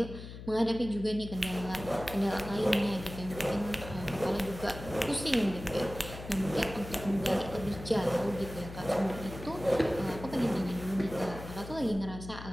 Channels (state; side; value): noise; left; hum, 12 dB below the sound